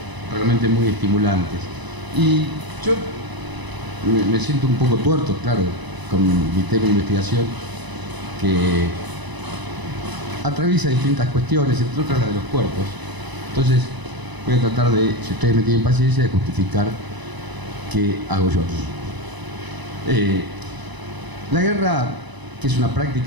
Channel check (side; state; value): left; late; 1.0 ms